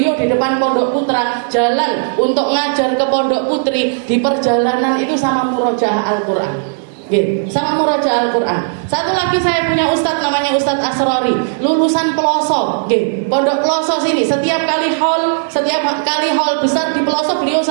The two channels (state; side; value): silent; left; digital silence